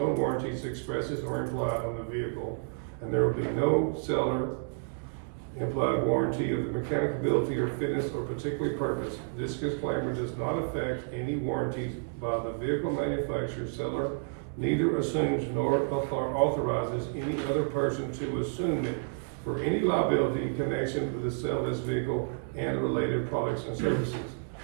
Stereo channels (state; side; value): silent; left; digital silence